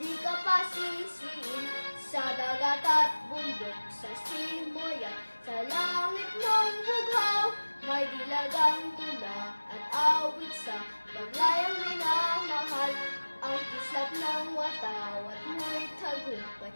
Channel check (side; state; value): both; inverted; correlation -1.00